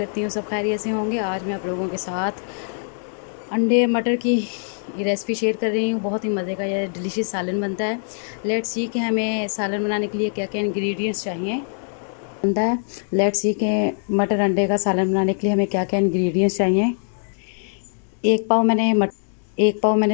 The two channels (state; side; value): silent; right; 64 dB below the other